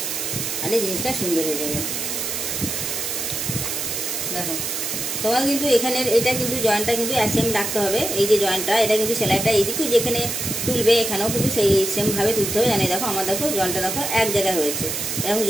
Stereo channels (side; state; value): right; noise; hiss, 3 dB below the sound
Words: তাহলে জিনিসটা সুন্দর হয়ে যাবে। দেখো, তোমার কিন্তু এখানের এটা কিন্তু জয়েন্টটা কিন্তু সেম রাখতে হবে। এই যে জয়েন্টটা, এটা কিন্তু সেলাইটা এইদিকেও যেখানে তুলবে এখানেও কিন্তু সেই সেমভাবে তুলতে হবে। জানি দেখো আমার দেখো জয়েন্টটা দেখো এক জায়গায় হয়েছে, এরকম